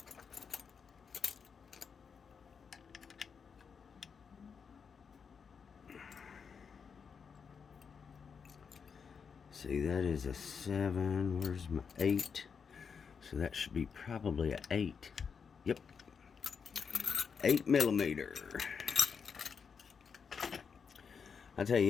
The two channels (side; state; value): right; quieter; 6.2 dB